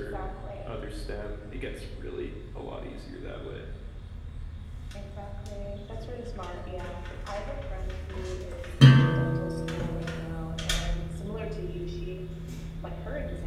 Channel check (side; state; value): both; identical; correlation 1.00